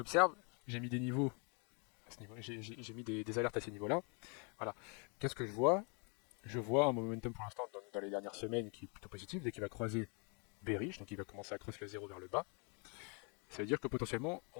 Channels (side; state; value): right; quieter; 35.6 dB